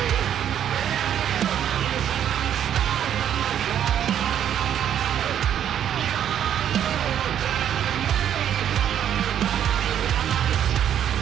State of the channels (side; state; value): left; quieter; 9.8 dB